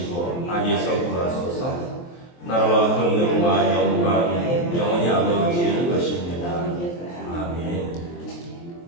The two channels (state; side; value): late; right; 23 ms